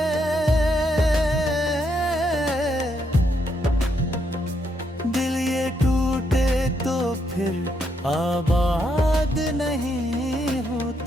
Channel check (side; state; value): both; normal; correlation 0.77